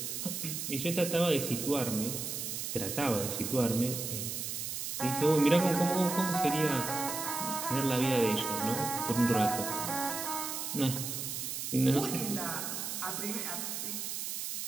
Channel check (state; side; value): noise; right; hiss, 4 dB below the sound